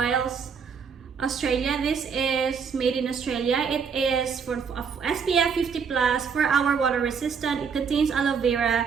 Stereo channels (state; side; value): quieter; left; 6.3 dB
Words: Australia. This is made in Australia. It is for SPF 50+, 4-hour water resistant. It contains aloe